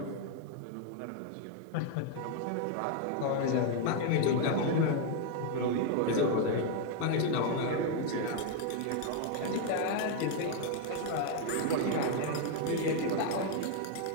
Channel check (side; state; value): both; different; correlation 0.00